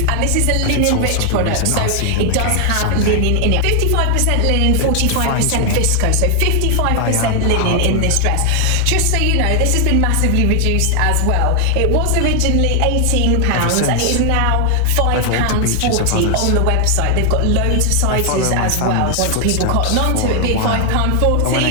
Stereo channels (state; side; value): different; both; correlation 0.00